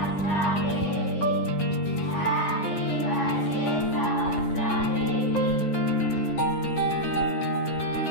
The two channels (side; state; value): right; late; 9.7 ms